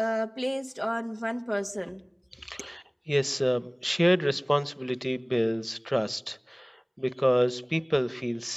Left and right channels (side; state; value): both; identical; correlation 1.00